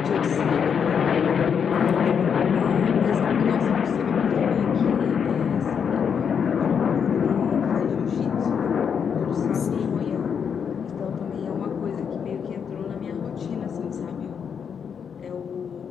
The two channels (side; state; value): right; quieter; 7.1 dB